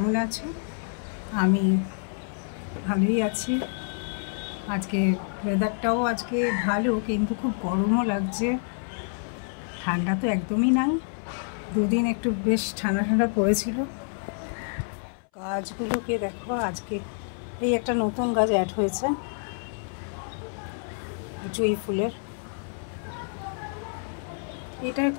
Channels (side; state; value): right; silent; 60 dB below the other